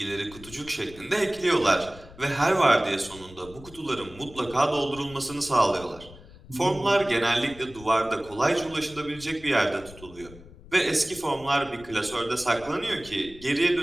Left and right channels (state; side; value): noise; left; rumble, 19 dB below the sound